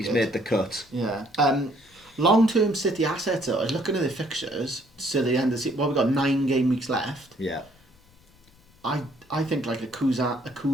made the cut. Yeah. Long-term City assets, though, I was looking at the fixtures to the end of the season. Well, we've got 9 game weeks left. Yeah. I think like a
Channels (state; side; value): noise; left; rumble, 30 dB below the sound